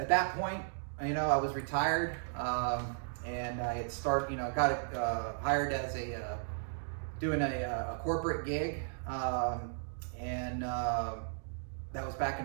that point, I was retired, and I had started. Got hired as doing a corporate gig, and that was back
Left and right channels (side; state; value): left; silent; digital silence